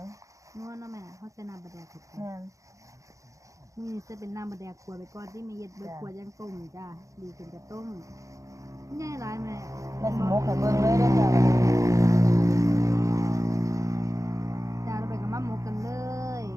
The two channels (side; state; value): left; late; 0.16 ms